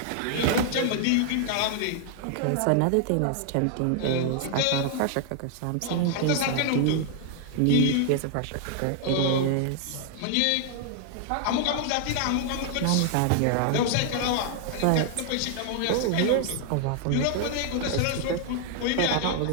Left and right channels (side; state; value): both; different; correlation 0.00